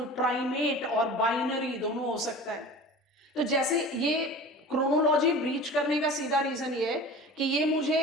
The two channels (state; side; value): normal; both; correlation 0.38